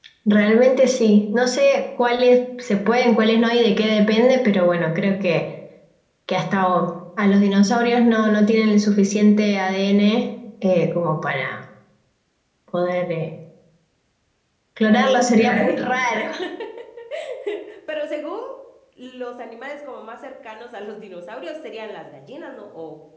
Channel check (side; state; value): both; identical; correlation 1.00